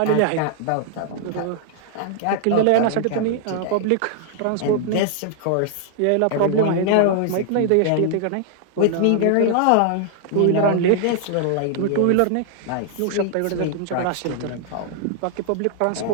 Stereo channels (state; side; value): different; both; correlation -0.01